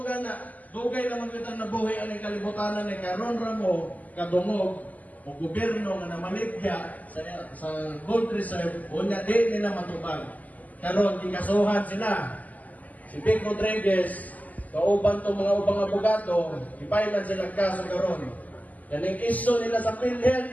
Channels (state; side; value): late; right; 0.078 ms